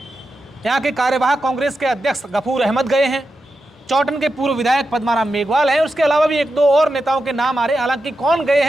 यहाँ के कार्यवाहक कांग्रेस के अध्यक्ष गफूर अहमद गए हैं। चौटन के पूर्व विधायक पद्माराम मेघवाल हैं। उसके अलावा भी 1-2 और नेताओं के नाम आ रहे हैं। हालांकि कौन गए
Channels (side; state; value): both; normal; correlation 0.89